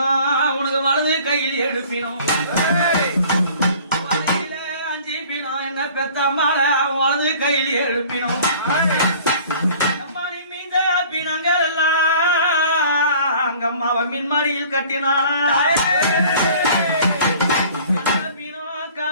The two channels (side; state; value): both; inverted; correlation -0.49